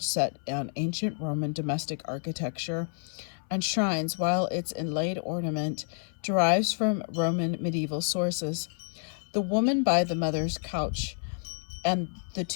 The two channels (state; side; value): silent; right; 58 dB below the other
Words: set on ancient Roman domestic architecture and shrines, while its inlaid ornament derives from Roman medieval sources. The woman by the mother's couch and the